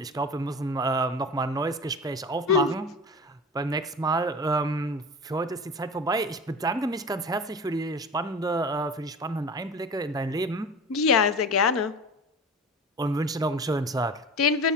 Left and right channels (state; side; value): normal; both; correlation 0.34